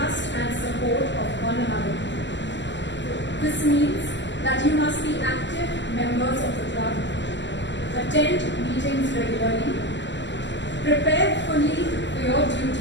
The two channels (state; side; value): late; right; 0.53 ms